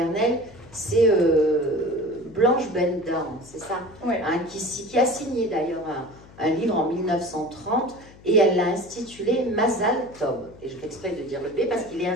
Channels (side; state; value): left; noise; hum, 22 dB below the sound